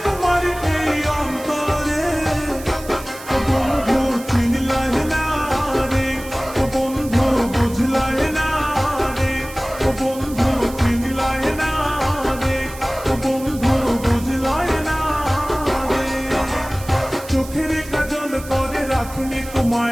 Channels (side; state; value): right; noise; hiss, 16 dB below the sound